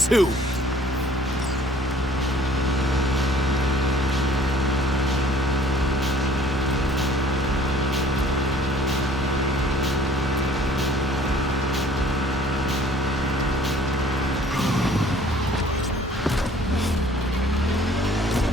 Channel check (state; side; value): normal; both; correlation 0.54